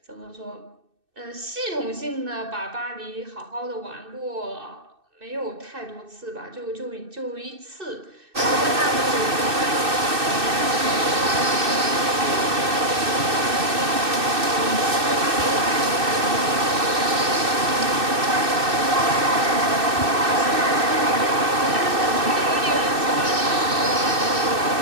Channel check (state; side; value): late; left; 2.6 ms